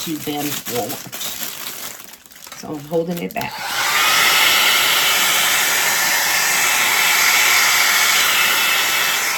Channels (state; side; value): identical; both; correlation 1.00